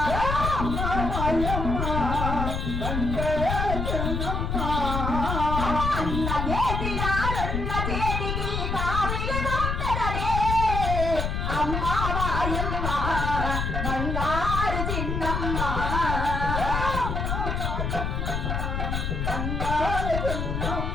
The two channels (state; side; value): noise; left; rumble, 1 dB below the sound